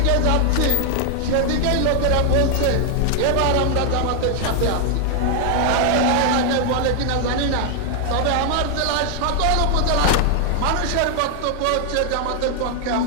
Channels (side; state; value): both; different; correlation 0.00